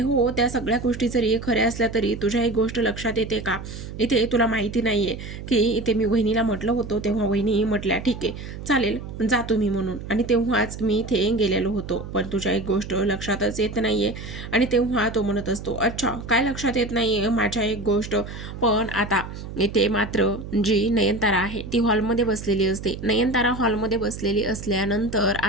हो, त्या सगळ्या गोष्टी जरी खऱ्या असल्या तरी तुझ्या एक गोष्ट लक्षात येते का? इथे तुला माहिती नाही आहे की इथे मी वहिनीला म्हटलं होतं, तेव्हा वहिनी म्हटल्या ठीक आहे चालेल जा तुम्ही म्हणून, आणि तेव्हाच मी इथे गेलेलो होतो. पण तुझ्या एक गोष्ट लक्षातच येत नाही आहे. आणि तेव्हा तो म्हणत असतो, अच्छा काय लक्षात येत नाही आहे माझ्या एक गोष्ट? पण आता इथे मात्र जी नयनतारा आहे ती हॉलमध्ये बसलेली असते. नयनतारा हॉलमध्ये बसलेली असल्यानंतर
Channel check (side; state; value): right; noise; hum, 10 dB below the sound